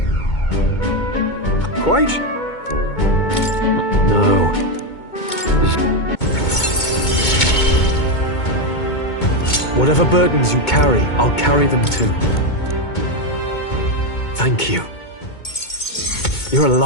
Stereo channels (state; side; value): late; right; 2.2 ms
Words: Quite. No. Whatever burdens you carry, I'll carry them too. Thank you. You're a